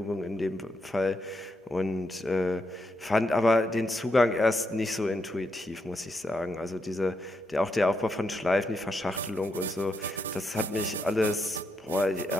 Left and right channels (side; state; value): both; normal; correlation 0.81